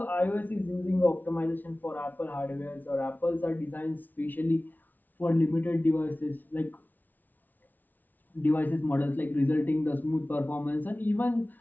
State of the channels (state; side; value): late; right; 0.082 ms